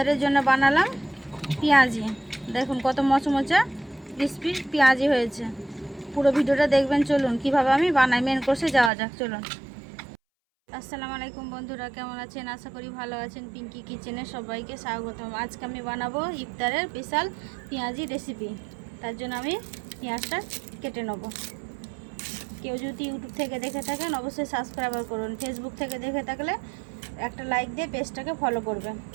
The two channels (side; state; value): left; drops out; at 8.9 s